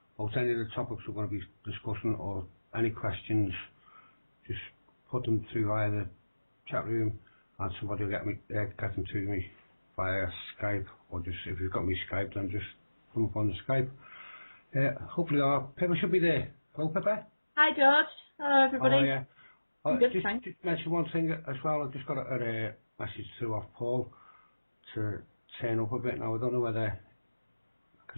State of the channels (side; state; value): both; inverted; correlation -1.00